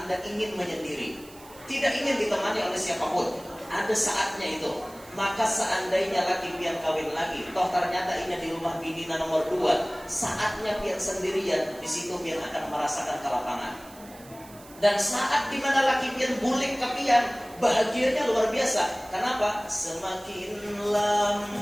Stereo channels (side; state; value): right; noise; hiss, 21 dB below the sound